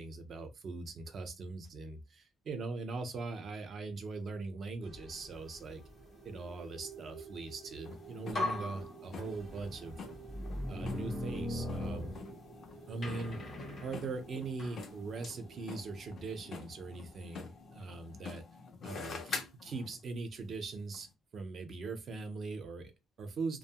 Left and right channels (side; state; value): both; normal; correlation 0.77